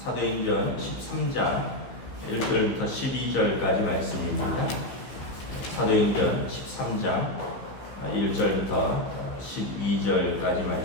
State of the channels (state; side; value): late; right; 15 ms